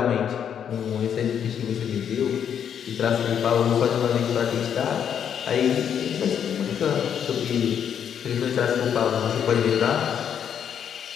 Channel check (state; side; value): quieter; right; 8.5 dB